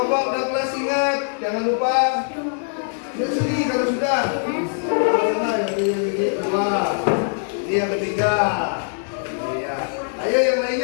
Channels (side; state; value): right; silent; digital silence